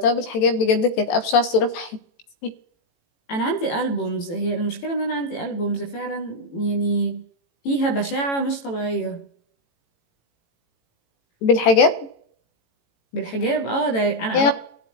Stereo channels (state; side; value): late; right; 18 ms